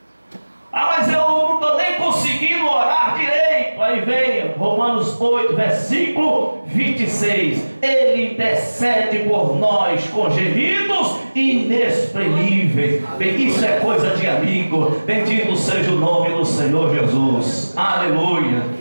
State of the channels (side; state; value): both; inverted; correlation -1.00